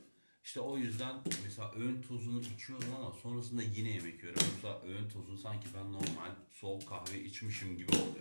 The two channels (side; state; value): both; inverted; correlation -1.00